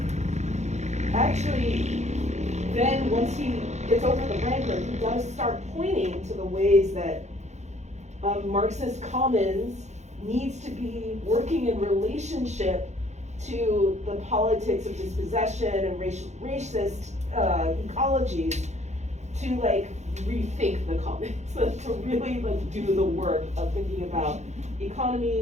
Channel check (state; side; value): late; left; 0.33 ms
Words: actually, then once he gets over the rancor, he does start pointing to the ways that Marxist commons needs to be working in relationship to the politics of dispossession and racist ecologies to like rethink the commons, to really like do the work of thinking about